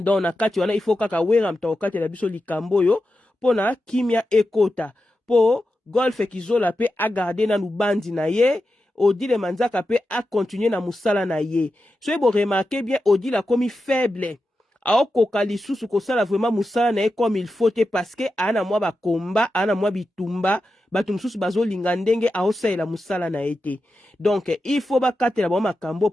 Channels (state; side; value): normal; both; correlation 0.90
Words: na kati wana il faut kaka wera mutu akokatela biso likambo oyo mpona kimia ekota po golf ekizola mpe agarde nanu bandi na ye odile manzaka mpe akontinue na mosala na ye soki boremarke bien odile akomi faible aokoka lisusu kosala vraiment mosala na ye comme il faut te parce que ana mwa bakomba ana mwa bitumba bato mosusu bazolinga ndenge aosalela mosala na ye te donc il faut bakatela bango makambo